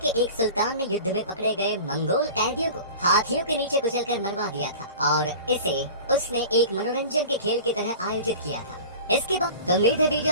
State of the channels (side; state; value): both; inverted; correlation -0.38